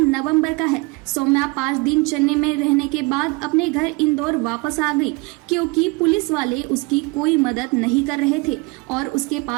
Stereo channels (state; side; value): quieter; left; 26.2 dB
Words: का है। सौम्या 5 दिन चेन्नई में रहने के बाद अपने घर इंदौर वापस आ गई, क्योंकि पुलिस वाले उसकी कोई मदद नहीं कर रहे थे और उसके